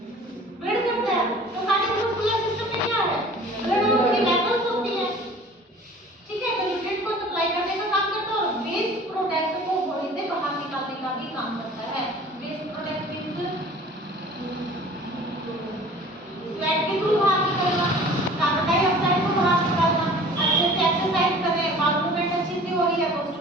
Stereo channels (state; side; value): normal; both; correlation 0.46